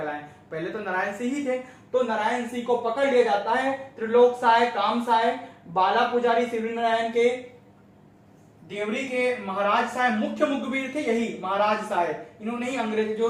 पहले तो नारायण सिंह ही थे। तो नारायण सिंह को पकड़ लिया जाता है। त्रिलोक साय, काम साय, बाला पुजारी शिवरी नारायण के, देवरी के महाराज साहब मुख्य मुखबिर थे, यही महाराज साहब, इन्होंने ही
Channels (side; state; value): both; identical; correlation 1.00